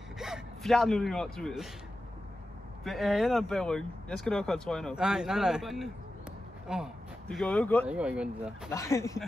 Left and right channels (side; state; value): both; normal; correlation 0.92